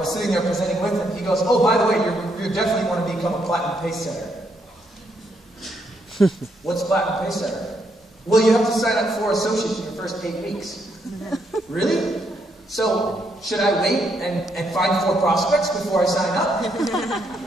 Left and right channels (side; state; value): both; normal; correlation 0.76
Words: sitting there presenting with him, he goes, oh, by the way, you definitely want to become a Platinum Pay Center. What's Platinum Pay Center? Well, you have to sign up for associates in your first 8 weeks. Really? So, should I wait and find 4 prospects before I sign up?